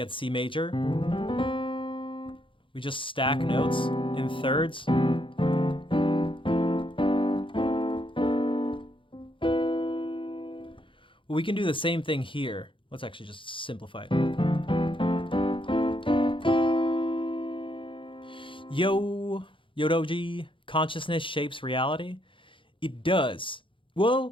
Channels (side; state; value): right; late; 0.25 ms